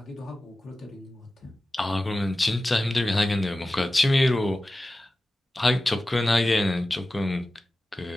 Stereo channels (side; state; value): both; normal; correlation 0.95